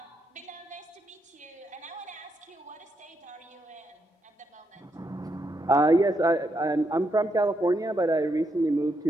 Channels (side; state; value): both; normal; correlation 0.80